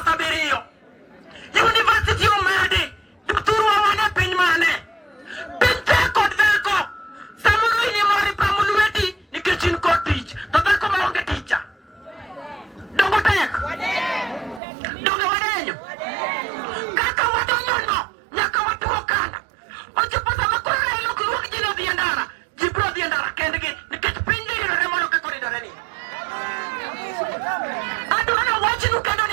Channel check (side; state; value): left; drops out; at 14.6 s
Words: 7. University omedi. Jothurwa wan e piny mane? Piny tek kod dhako. Samoro in ema ripamo lweti nikech in kod tich. To dhako maonge ticha. Dongo tek. Dongo wadenyo. Kaka wadonyono nyaka watuo kanda. Ochopo sama koro Raila ok luong ji ni odhi e ndara. Ji biro dhi e ndara kendgi nikech piny ridore molo kaka oridore ni. Adwa ni awachnu kendo